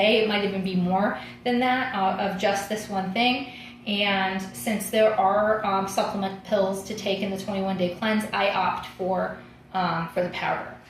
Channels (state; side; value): identical; both; correlation 1.00